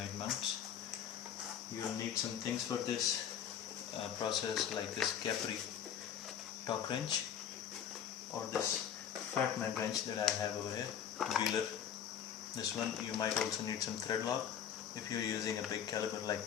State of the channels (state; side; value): quieter; right; 8.9 dB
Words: mounts. You will need some things for this process, like this Capri torque wrench or this fat man wrench that I have over here, wheeler. This one. You might also need some thread lock if you're using a big caliber like